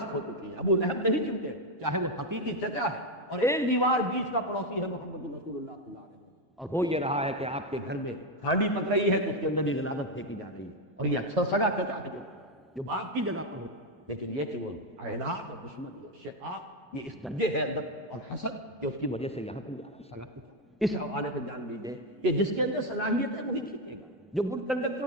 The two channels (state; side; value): normal; both; correlation 0.07